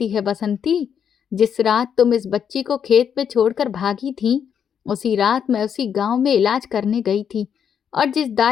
है बसंती। जिस रात तुम इस बच्ची को खेत में छोड़कर भागी थी, उसी रात मैं उसी गांव में इलाज करने गई थी और जिस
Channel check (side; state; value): right; quieter; 7.9 dB